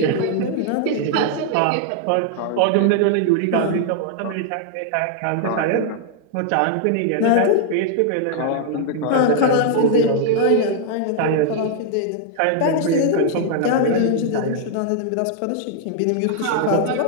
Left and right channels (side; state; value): both; different; correlation 0.00